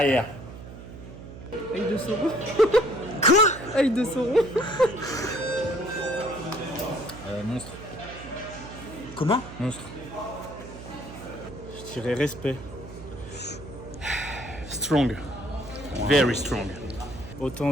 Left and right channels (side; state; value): right; noise; hum, 13 dB below the sound